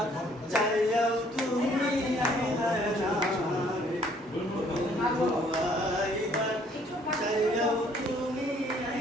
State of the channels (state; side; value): normal; both; correlation 0.62